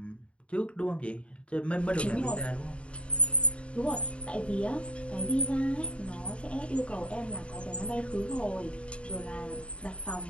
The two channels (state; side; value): late; right; 0.060 ms